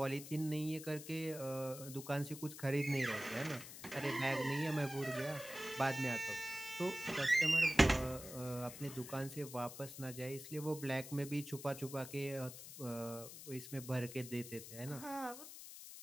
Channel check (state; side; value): noise; left; hiss, 12 dB below the sound